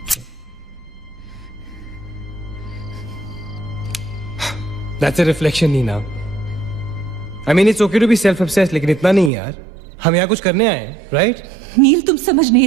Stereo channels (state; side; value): drops out; left; at 9.3 s